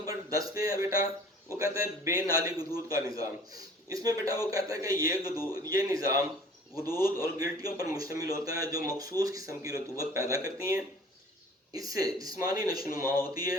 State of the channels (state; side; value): normal; both; correlation 0.49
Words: 10 پہ ہے بیٹا وہ کہتا ہے بے نالی غدود کا نظام۔ اس میں بیٹا وہ کہتا ہے کہ یہ نظام غدود اور گلٹیوں پر مشتمل ہوتا ہے جو مخصوص قسم کی رطوبت پیدا کرتی ہیں، اس سے جسمانی نشوونما ہوتی